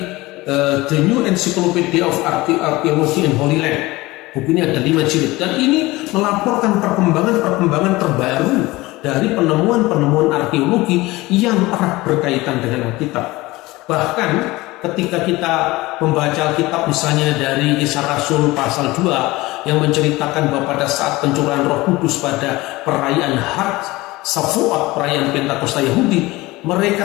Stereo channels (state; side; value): quieter; right; 20.3 dB